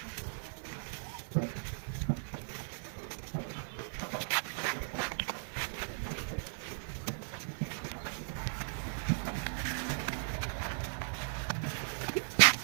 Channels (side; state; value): left; silent; digital silence